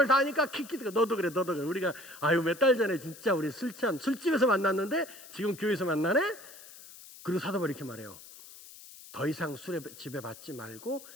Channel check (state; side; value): noise; left; hiss, 18 dB below the sound